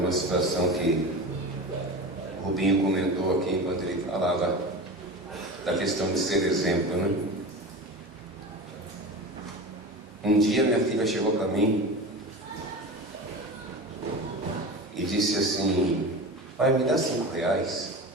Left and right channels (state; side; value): normal; both; correlation 0.29